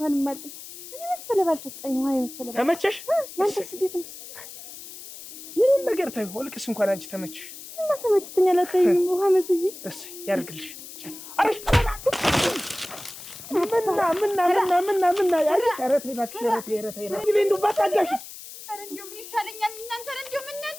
ማልኝ እኔ መሰለ ባልሰጠኝ ውሃ የመሰለ ተመቸሽ ያንተስ እንዴት ነው ይሄን ነገር ታዩ ወልቅስ እንኳን አንቺ ተመቸሽ እና ተመችተኛል አታይም ውሃ መስዬ እሺ ያርግልሽ አሽ ምንና ያሪ ተረት ይባክሽ ተረት እንደው ባታጋሽ አረ እንደው ምን ይሻለኛል እናንተ እንደው ምን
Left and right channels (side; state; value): left; noise; hiss, 14 dB below the sound